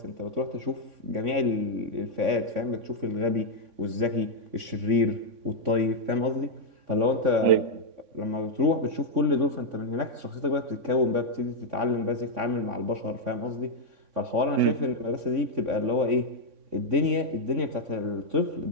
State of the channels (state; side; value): late; left; 3.6 ms